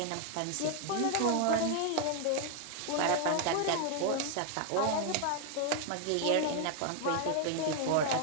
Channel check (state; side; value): different; both; correlation 0.00